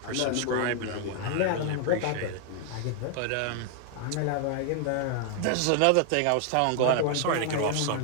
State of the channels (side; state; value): both; different; correlation 0.00